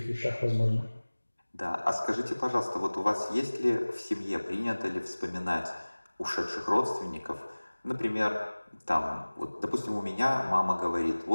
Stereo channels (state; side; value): inverted; both; correlation -1.00